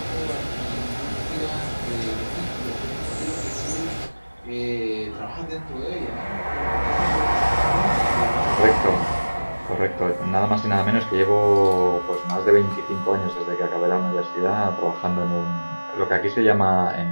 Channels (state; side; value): inverted; both; correlation -1.00